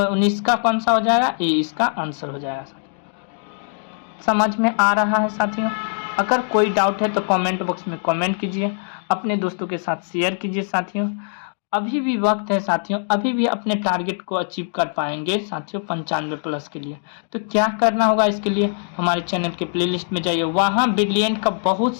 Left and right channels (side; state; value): right; silent; digital silence